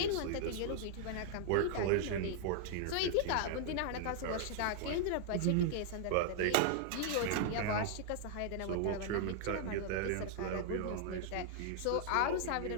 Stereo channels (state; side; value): different; both; correlation -0.01